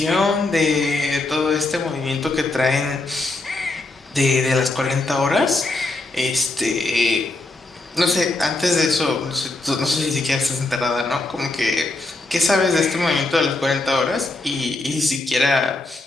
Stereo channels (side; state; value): right; quieter; 3.0 dB